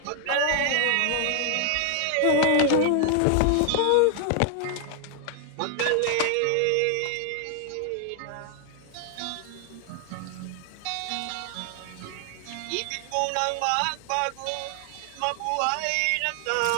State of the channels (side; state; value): both; different; correlation 0.00